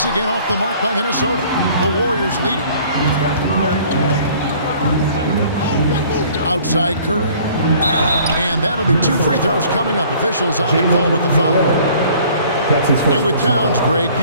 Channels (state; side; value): inverted; both; correlation -0.54